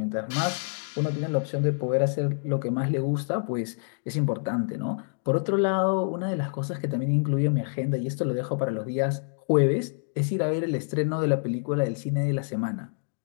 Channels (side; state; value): right; silent; digital silence